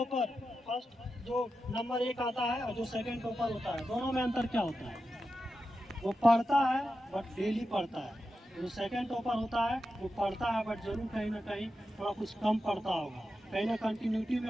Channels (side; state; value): both; normal; correlation 0.90